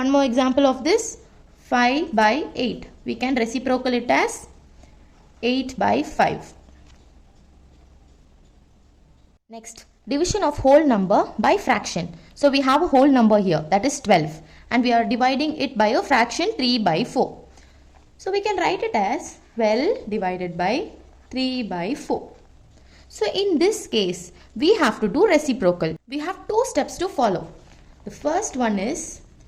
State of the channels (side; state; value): both; identical; correlation 1.00